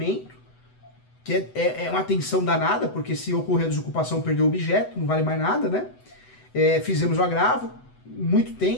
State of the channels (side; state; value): right; late; 8.0 ms